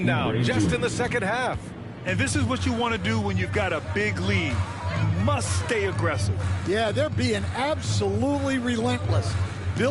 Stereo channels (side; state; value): both; identical; correlation 1.00